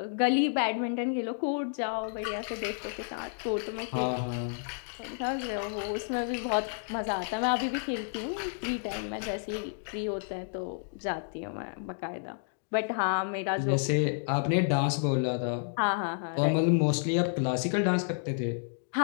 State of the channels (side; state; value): right; silent; digital silence